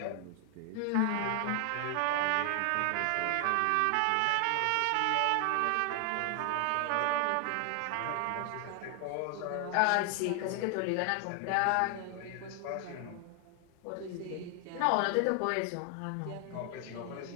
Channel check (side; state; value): both; different; correlation 0.00